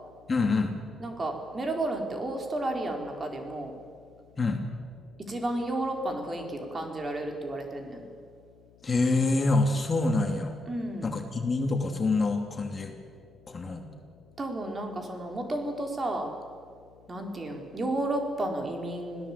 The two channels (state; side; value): noise; left; hum, 26 dB below the sound